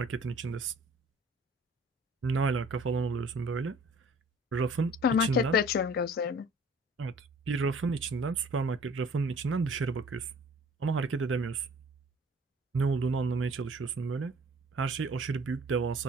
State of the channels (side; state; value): both; normal; correlation 0.51